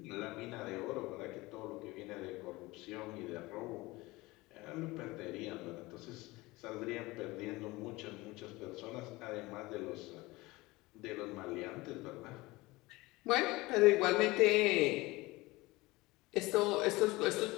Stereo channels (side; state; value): right; quieter; 21.2 dB